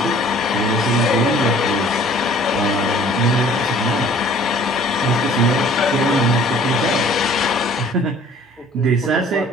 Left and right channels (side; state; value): both; normal; correlation 0.52